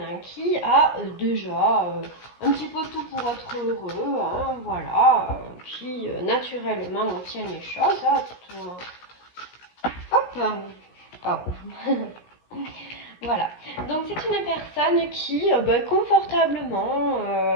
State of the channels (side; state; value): right; late; 17 ms